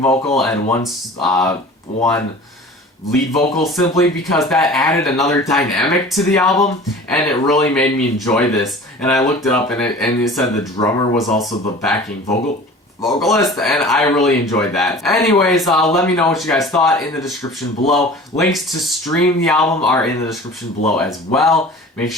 vocal and one lead vocal, simply because that added another dynamic to the album, and it really made me enjoy this. And I looked it up, and it said the drummer was also the backing vocalist, and I really enjoyed that. Anyways, let me know what you guys thought in the description below. Links to stream the album are in the description below as well. Make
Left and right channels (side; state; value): both; normal; correlation 0.41